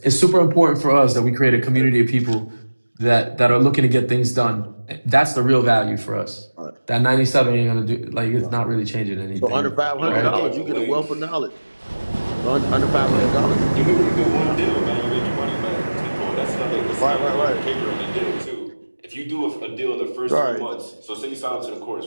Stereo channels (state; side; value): inverted; both; correlation -1.00